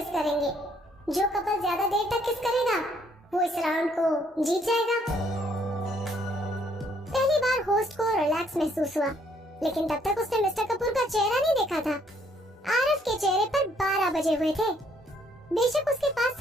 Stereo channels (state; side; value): normal; both; correlation 0.67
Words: करेंगे। जो कपल ज्यादा देर तक किस करेगा वो इस राउंड को जीत जाएगा। पहली बार होस्ट को रिलैक्स महसूस हुआ, लेकिन तब तक उसने मिस्टर कपूर का चेहरा नहीं देखा था। आरव के चेहरे पर 12 बजे हुए थे। बेशक उसके